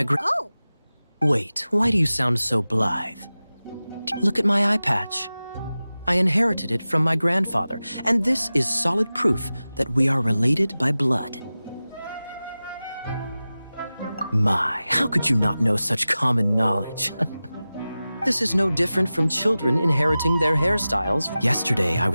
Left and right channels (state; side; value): inverted; both; correlation -0.96